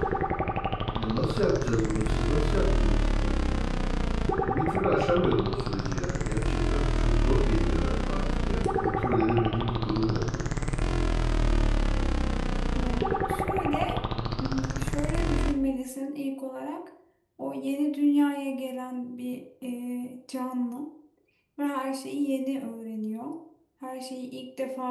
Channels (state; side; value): identical; both; correlation 1.00